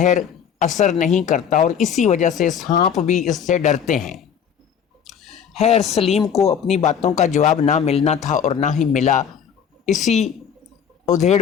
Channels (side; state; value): right; quieter; 7.9 dB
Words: اثر نہیں کرتا، اور اسی وجہ سے سانپ بھی اس سے ڈرتے ہیں۔ خیر، سلیم کو اپنی باتوں کا جواب نہ ملنا تھا اور نہ ہی ملا۔ اسی ادھیڑ